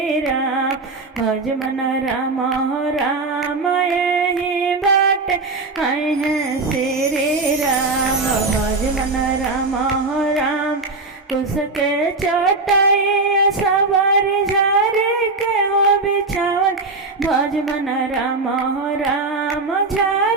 राम भज मन राम राम हे बाटे आई हैं श्री राम भज मन राम राम उसके चटाई सवार झारे के हो बिछावन भज मन राम राम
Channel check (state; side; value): quieter; left; 3.6 dB